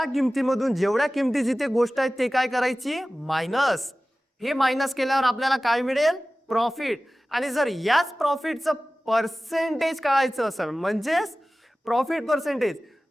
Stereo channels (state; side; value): normal; both; correlation 0.97